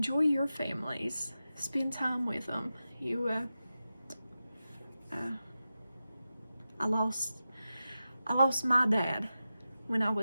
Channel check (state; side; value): inverted; both; correlation -0.92